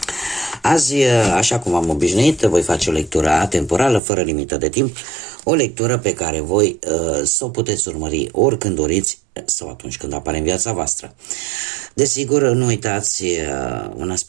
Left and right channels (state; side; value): drops out; left; at 4.0 s